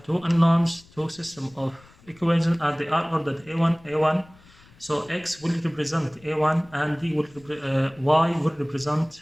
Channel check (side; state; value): left; noise; rumble, 26 dB below the sound